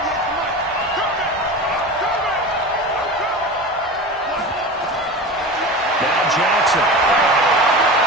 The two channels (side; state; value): both; normal; correlation 0.30